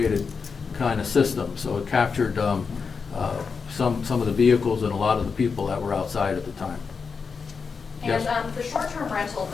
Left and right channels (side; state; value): right; quieter; 5.4 dB